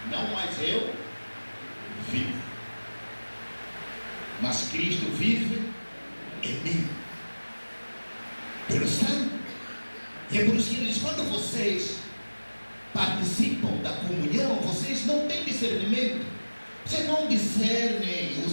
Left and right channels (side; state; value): both; inverted; correlation -1.00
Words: não mais eu vivo, mas Cristo vive em mim, pelo sangue. E é por isso que ele diz, quando vocês participam da comunhão, vocês não têm discernimento, vocês não discernem o